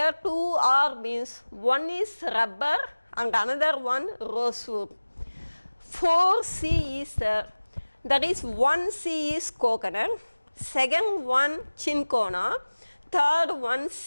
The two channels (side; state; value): both; inverted; correlation -1.00